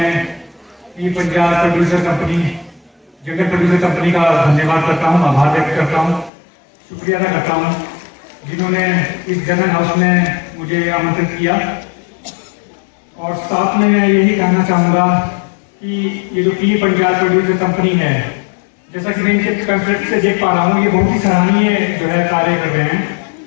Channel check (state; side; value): drops out; right; at 6.3 s